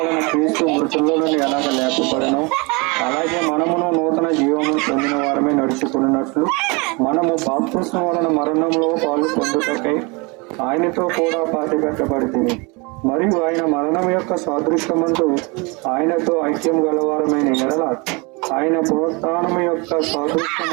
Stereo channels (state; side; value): quieter; left; 28.6 dB